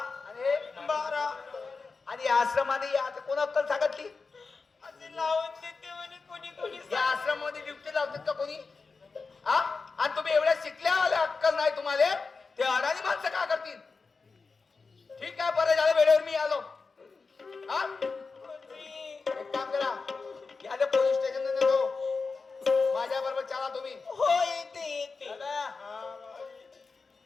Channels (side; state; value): right; quieter; 4.4 dB